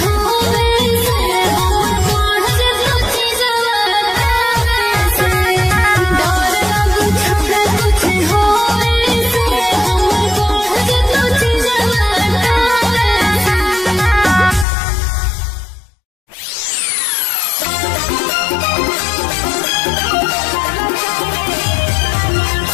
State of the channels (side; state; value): right; drops out; at 14.7 s